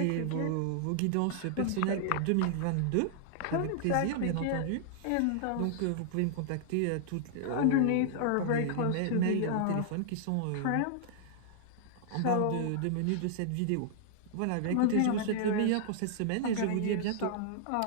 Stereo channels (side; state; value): both; different; correlation -0.01